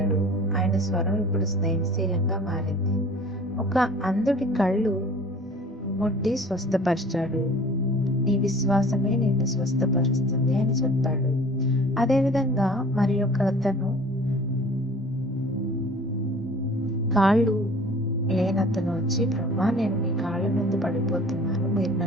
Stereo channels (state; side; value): normal; both; correlation 0.46